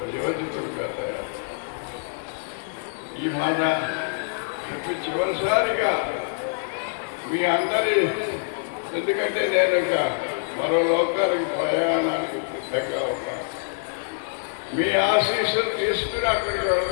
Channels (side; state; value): right; silent; digital silence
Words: తయారు. ఈ మాట చెప్పి చివరిసారిగా మీ అందరి, ఎందుకంటే నేను ఇక మరో లోకానికి ప్రయాణానికి సిద్ధంగా ఉన్నాను. మీ ఆశీస్సులు తీసుకుని అక్కడికి